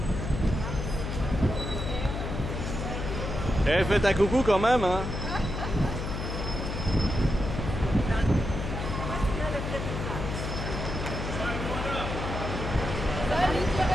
Eh, faites un coucou quand même, hein. Salut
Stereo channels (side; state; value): left; noise; hum, 4 dB below the sound